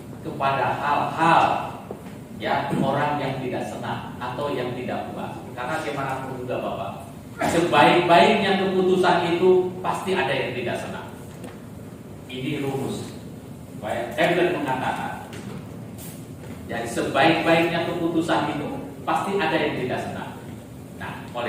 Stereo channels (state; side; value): identical; both; correlation 1.00